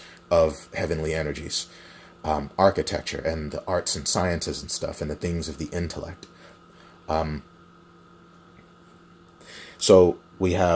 of heavenly energies, architecture and the arts and sciences and stuff, and the things of the intellect. So we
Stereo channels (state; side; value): identical; both; correlation 1.00